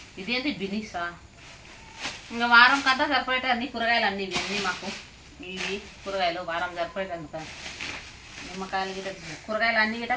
ఇదేంటి బినీసా. ఇంకా వారం కంతా సరిపోయేట అన్ని కూరగాయలు అన్నీ ఇవన్నీ మాకు. ఇవి కూరగాయలు వారం సరిపోయేటందుక. నిమ్మకాయలు గిట్ట కూరగాయలు అన్నీ గిట్ట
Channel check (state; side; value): identical; both; correlation 1.00